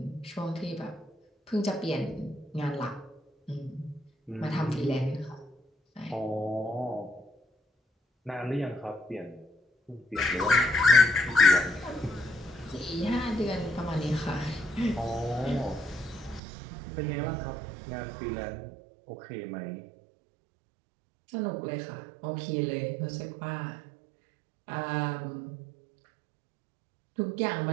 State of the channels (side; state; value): left; drops out; at 16.4 s